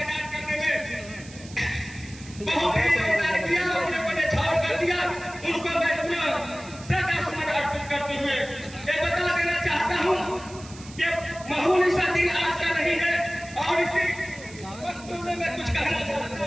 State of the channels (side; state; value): right; noise; hiss, 18 dB below the sound